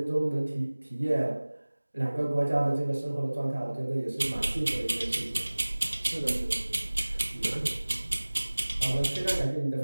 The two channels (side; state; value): both; inverted; correlation -1.00